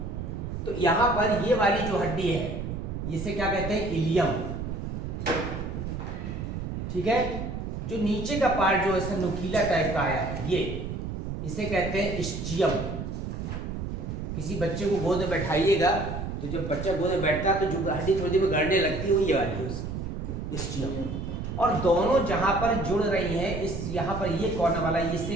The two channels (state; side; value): noise; right; rumble, 5 dB below the sound